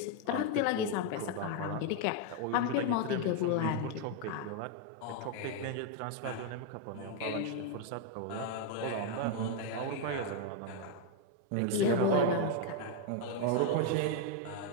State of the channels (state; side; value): different; both; correlation 0.01